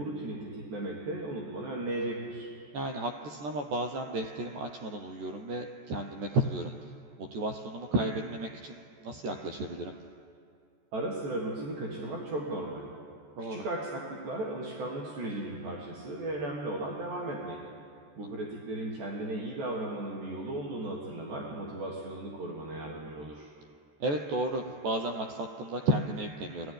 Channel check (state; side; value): late; left; 14 ms